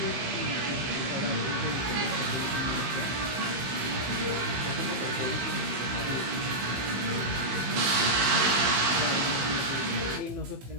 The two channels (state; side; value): late; left; 15 ms